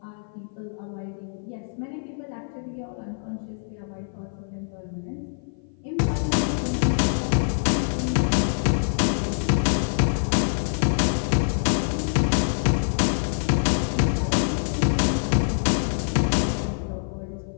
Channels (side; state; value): right; silent; 55 dB below the other